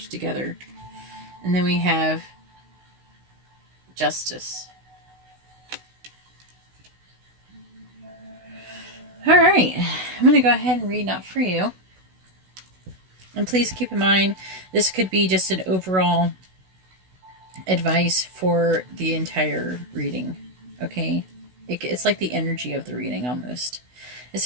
together. And then we have Justice. Alright, I'm going to go ahead and read Not For You. And please keep in mind, this could be just an overall advice for the entire reading. Okay? It's like the energy of the reading almost. It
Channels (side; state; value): left; late; 16 ms